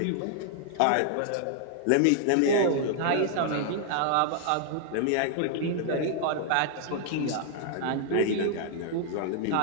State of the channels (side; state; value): both; different; correlation 0.00